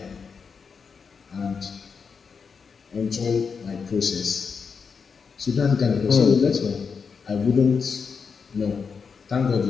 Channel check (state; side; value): quieter; right; 5.7 dB